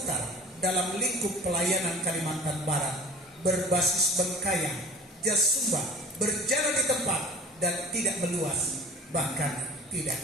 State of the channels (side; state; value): both; normal; correlation 0.40